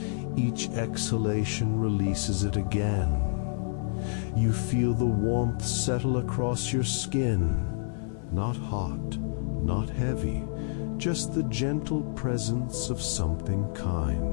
Each exhalation releases it again. You feel the warmth settle across your skin. Not hot, not heavy, just the gentle presence of something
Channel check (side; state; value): right; silent; digital silence